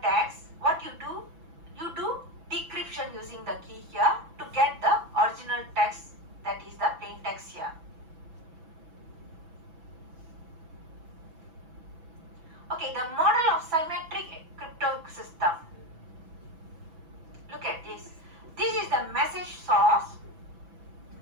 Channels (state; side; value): late; left; 6.0 ms